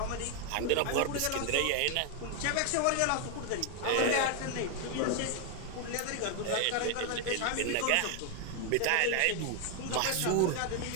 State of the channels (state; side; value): different; both; correlation 0.00